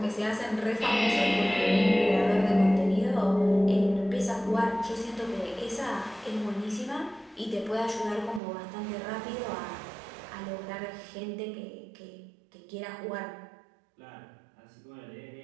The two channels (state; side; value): drops out; left; at 8.4 s